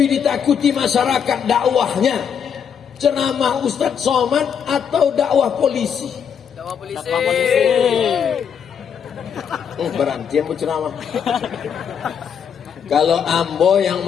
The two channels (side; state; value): right; quieter; 7.6 dB